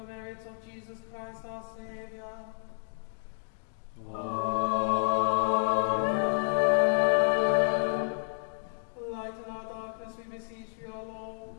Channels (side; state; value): right; silent; digital silence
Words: merits of Jesus Christ our Saviour. Lighten our darkness, we beseech you, O Lord,